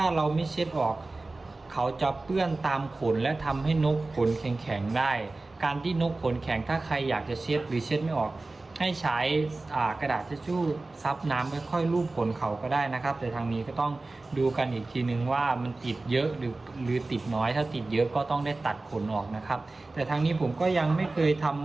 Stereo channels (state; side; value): quieter; left; 3.2 dB